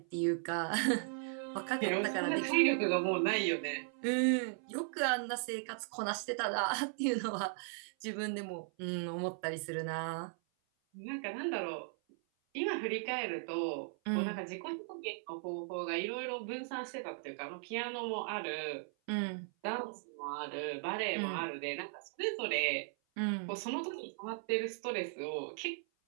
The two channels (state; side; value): silent; left; 53 dB below the other